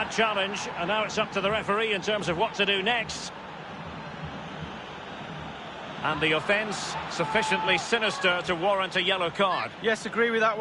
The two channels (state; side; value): identical; both; correlation 1.00